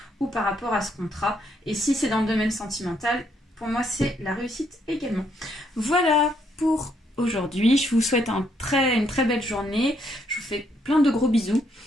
ou par rapport à ce contrat. Et si c'est dans le domaine sentimental, pour moi, c'est la réussite également. Voilà pour aujourd'hui. Je vous souhaite une très belle journée. Je vous fais plein de gros bisous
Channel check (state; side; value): normal; both; correlation 0.72